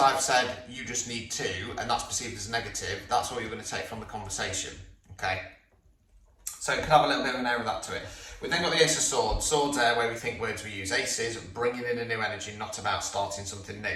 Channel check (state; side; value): identical; both; correlation 1.00